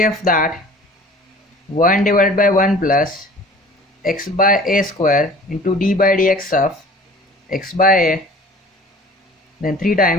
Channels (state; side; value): normal; both; correlation 0.46